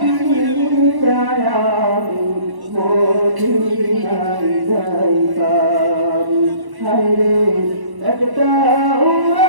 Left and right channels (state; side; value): late; left; 1.1 ms